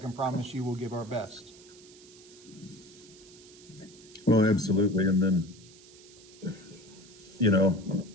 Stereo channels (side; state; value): right; noise; hiss, 22 dB below the sound